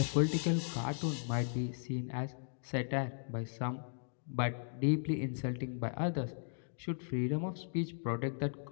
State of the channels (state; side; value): silent; right; digital silence